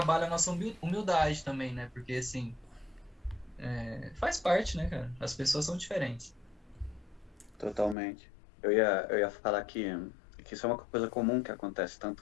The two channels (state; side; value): drops out; right; at 8.0 s